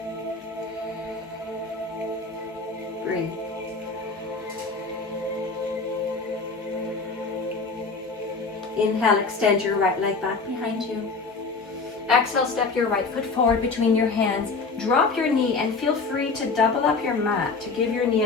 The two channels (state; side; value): quieter; right; 4.2 dB